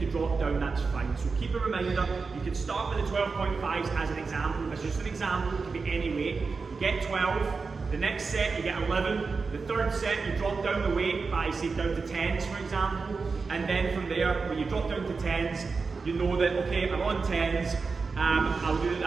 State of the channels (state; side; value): quieter; left; 4.6 dB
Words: to drop down, that's fine. So keep a reminder, you can start with the 12.5s as an example. As just an example, it could be any weight. You get 12, the next set you get 11, the third set you drop down the weight by say down to 10s for example, and then from there, when you drop down to 10s, you know that, okay, I'm on 10s, I'll do